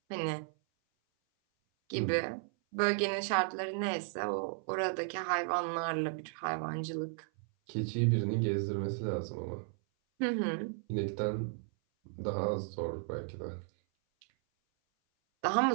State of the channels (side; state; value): left; silent; 55 dB below the other